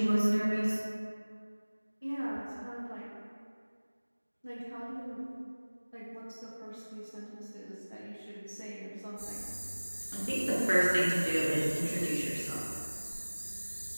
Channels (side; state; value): both; inverted; correlation -1.00